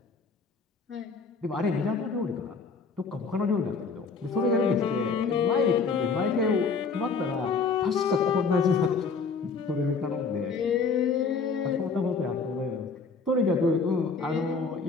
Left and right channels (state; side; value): quieter; right; 4.8 dB